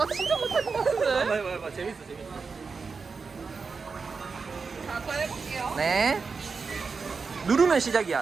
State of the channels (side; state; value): left; quieter; 4.9 dB